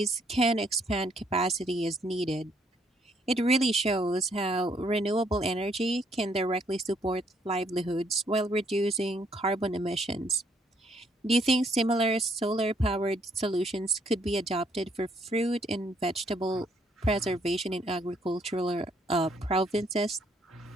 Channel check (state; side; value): normal; both; correlation 0.69